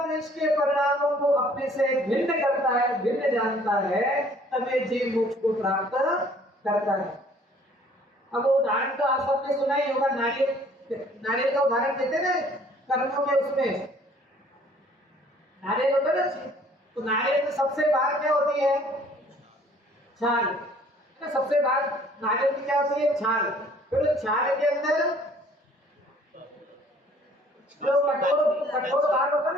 द्वेष के परिणामों को अपने से भिन्न करता है, भिन्न जानता है, तब ये जीव मोक्ष को प्राप्त करता है। अब उदाहरण तो आप सबने सुना ही होगा, नारियल का उदाहरण देते ना कर्मों के, उसमें नारियल होता है ना, तो नारियल में सबसे बाहर क्या होती है? छाल। सबसे बाहर नारियल की क्या होती है? छाल। फिर छाल के अंदर जो कठोर भाग होता है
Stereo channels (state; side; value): normal; both; correlation 0.56